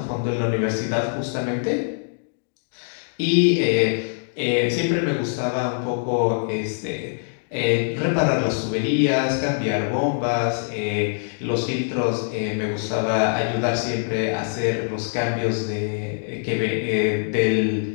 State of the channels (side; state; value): right; silent; digital silence